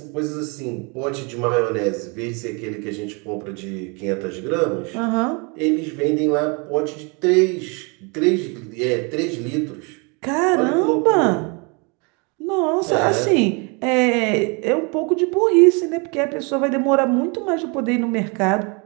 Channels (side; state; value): left; quieter; 32.0 dB